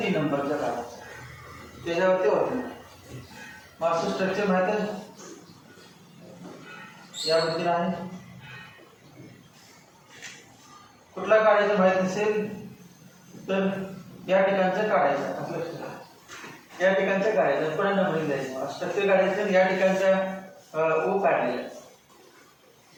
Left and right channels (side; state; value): both; identical; correlation 1.00